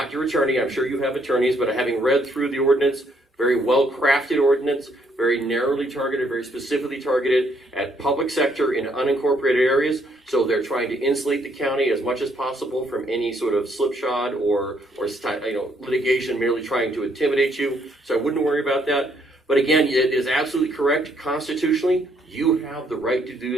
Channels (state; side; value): normal; both; correlation 0.70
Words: your attorney. I'm sure you have attorneys, but having read through the ordinance, very well-crafted ordinance, very narrowly targeted, very specifically targeted at public sector in unincorporated areas. So they're trying to insulate the county as much as possible from any sort of slipshod or litigation merely trying to intimidate you. So I wouldn't worry about that. But again, it is absolutely correct constitutionally. You have the right to